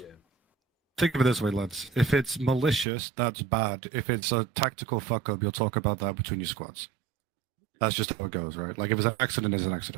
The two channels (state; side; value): drops out; left; at 2.9 s